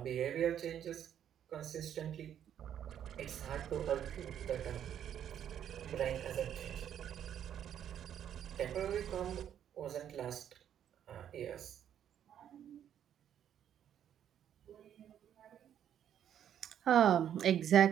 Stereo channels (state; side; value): quieter; left; 9.8 dB